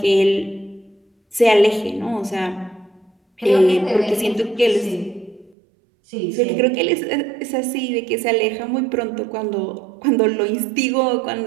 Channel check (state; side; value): drops out; left; at 5.6 s